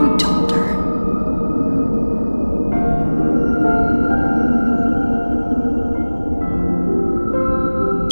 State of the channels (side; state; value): both; inverted; correlation -1.00